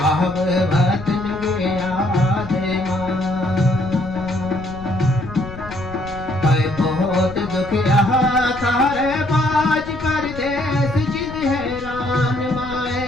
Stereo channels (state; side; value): noise; left; rumble, 13 dB below the sound